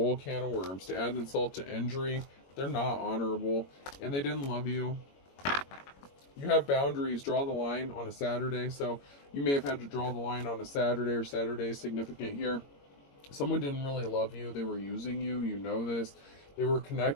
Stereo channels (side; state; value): right; late; 21 ms